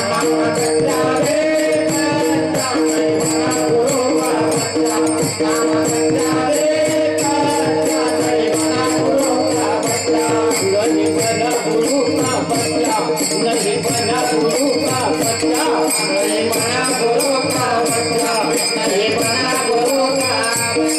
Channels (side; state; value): both; identical; correlation 1.00